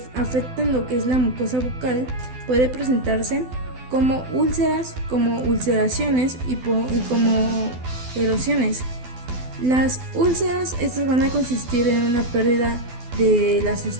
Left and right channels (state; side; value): late; left; 12 ms